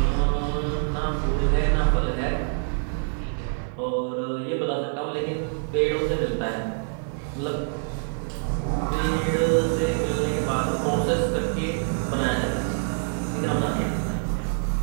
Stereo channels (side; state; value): left; silent; digital silence